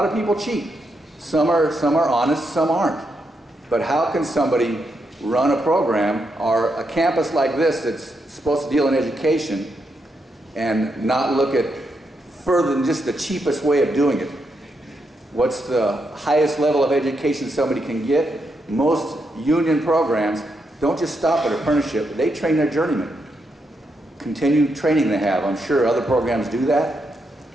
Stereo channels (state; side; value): normal; both; correlation 0.82